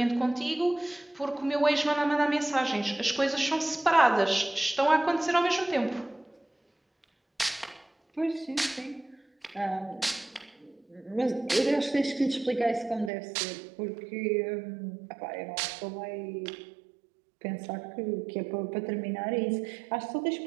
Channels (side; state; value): left; drops out; at 13.1 s